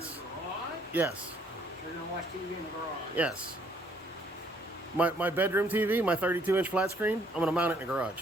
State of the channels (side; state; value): both; normal; correlation 0.65